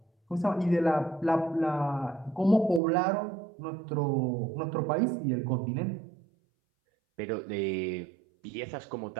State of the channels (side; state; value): left; drops out; at 2.8 s